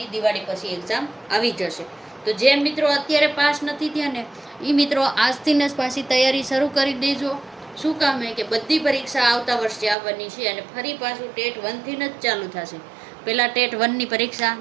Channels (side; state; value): left; drops out; at 10.0 s